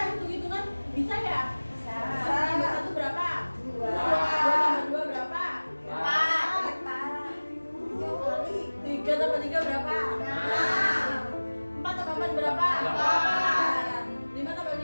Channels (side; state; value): both; inverted; correlation -1.00